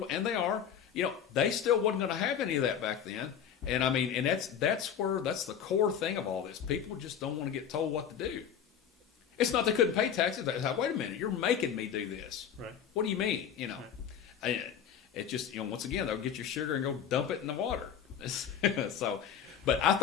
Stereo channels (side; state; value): right; quieter; 8.4 dB